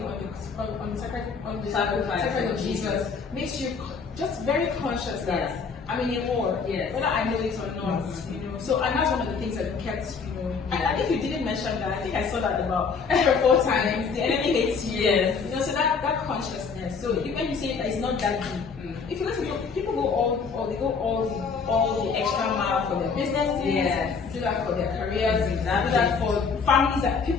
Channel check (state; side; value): quieter; right; 5.4 dB